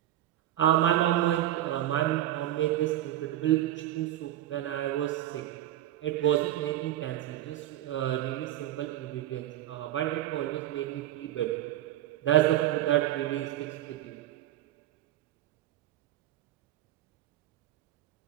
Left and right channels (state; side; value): quieter; left; 13.5 dB